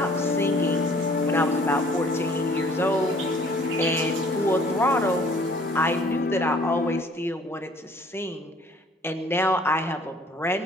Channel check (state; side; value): normal; both; correlation 0.56